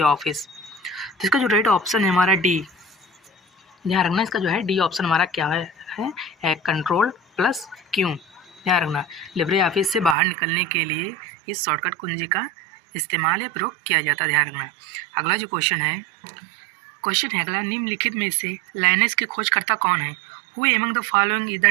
Office? तो इसका जो राइट ऑप्शन है हमारा डी। ध्यान रखना, इसका जो है डी ऑप्शन हमारा क्या है कंट्रोल प्लस क्यू। ध्यान रखना, लिब्रे ऑफिस से बाहर निकलने के लिए इस शॉर्टकट कुंजी का इस्तेमाल या प्रयोग किया जाता है। ध्यान रखना। अगला जो क्वेश्चन है अगला, निम्नलिखित में से लाइनेक्स के खोजकर्ता कौन है? Who among the following is the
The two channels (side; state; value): left; drops out; at 10.2 s